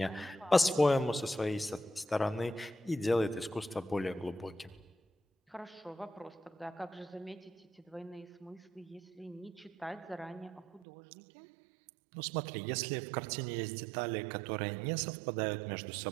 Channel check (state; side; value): drops out; left; at 10.9 s